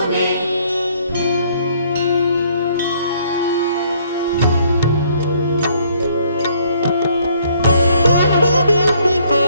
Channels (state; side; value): inverted; both; correlation -0.64